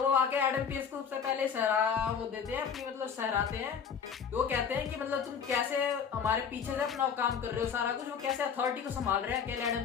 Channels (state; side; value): quieter; right; 6.9 dB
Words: वो आके एडम पियर्स को सबसे पहले वो देते हैं अपनी, मतलब सहराते हैं। वो कहते हैं कि मतलब तुम कैसे हमारे पीछे से अपना काम कर रहे हो, सारा कुछ वो कैसे अथॉरिटी को संभाल रहे हैं अकेले